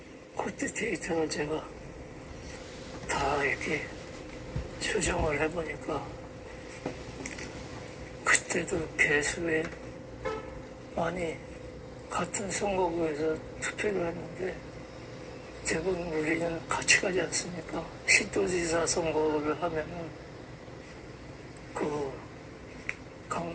그때 데이터를 제가 다 이렇게 조정을 해보니까 그때도 개수에 많이 같은 선거구에서 투표를 했는데 대부분 우리는 같이 가지 않습니까? 시도지사 선거를 하면은 그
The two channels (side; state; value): both; identical; correlation 1.00